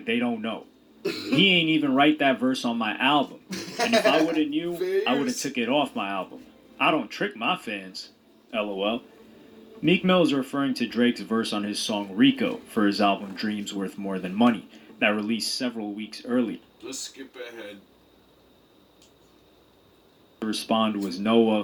they don't know. He ain't even write that verse on my album. And if I would've knew, I would've took it off my album. I don't trick my fans. LOL." Meek Mill is referring to Drake's verse on his song Rico for his album Dreams Worth More Than Money that released several weeks earlier. Let's skip ahead. respond was Noah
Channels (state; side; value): identical; both; correlation 1.00